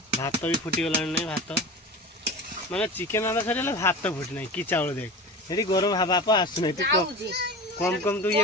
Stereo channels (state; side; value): normal; both; correlation 0.31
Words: भात भी फुटीगला नहीं भात माने चिकेन रंधा सर भात फुटी ना कि चाउल देख ये गरम बाप आसुना तू कम कम तू